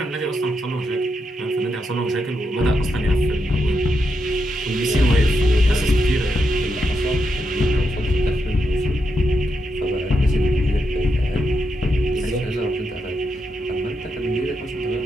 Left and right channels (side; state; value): both; normal; correlation 0.83